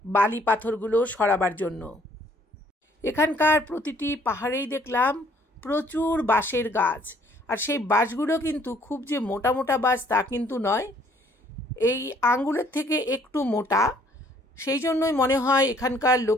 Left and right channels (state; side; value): normal; both; correlation 0.62